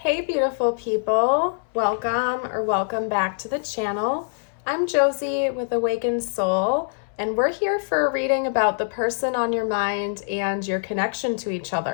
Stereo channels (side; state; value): right; silent; 63 dB below the other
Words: Hey beautiful people, welcome back to the channel. I'm Josie with Awakened Soul, and we're here for a reading about the person on your mind and your connection to each